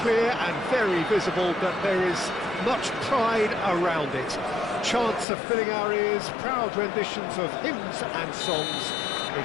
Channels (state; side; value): drops out; right; at 5.2 s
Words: clear and very visible that there is much pride around it. Chants are filling our ears, proud renditions of hymns and songs.